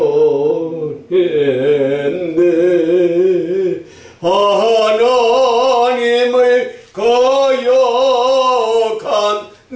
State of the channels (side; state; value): both; identical; correlation 1.00